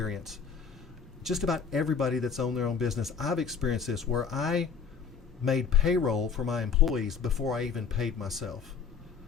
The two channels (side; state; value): right; quieter; 6.1 dB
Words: Just about everybody that's owned their own business, I've experienced this, where I made payroll for my employees before I even paid myself.